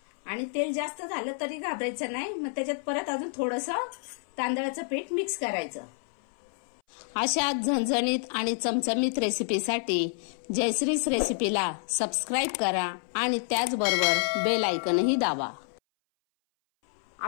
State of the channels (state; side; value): silent; right; 59 dB below the other